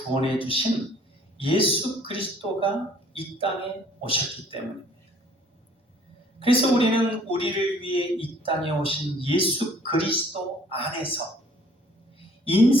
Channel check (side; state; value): both; normal; correlation 0.57